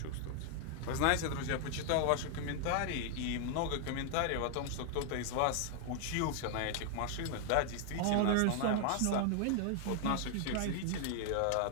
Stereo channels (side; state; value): both; different; correlation 0.00